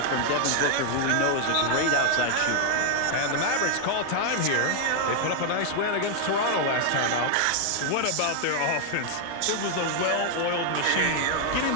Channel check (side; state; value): both; different; correlation 0.00